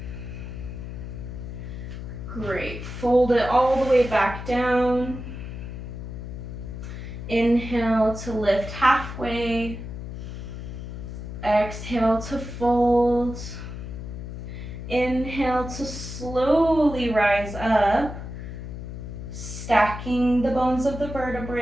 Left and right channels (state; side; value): noise; left; hum, 8 dB below the sound